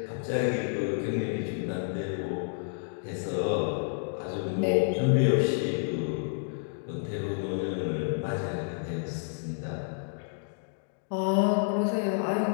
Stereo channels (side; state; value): right; silent; digital silence